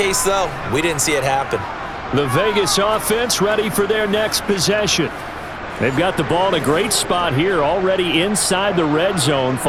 though, we didn't see it happen. The Vegas offense ready for their next possession. They've got the ball in a great spot here, already inside the red zone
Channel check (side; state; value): both; identical; correlation 1.00